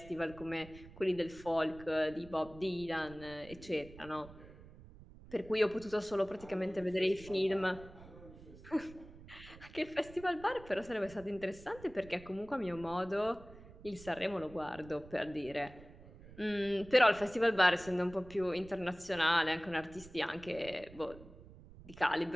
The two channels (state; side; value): noise; right; rumble, 18 dB below the sound